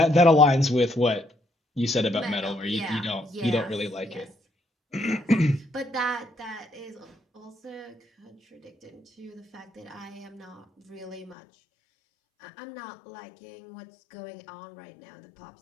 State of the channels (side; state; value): right; drops out; at 11.4 s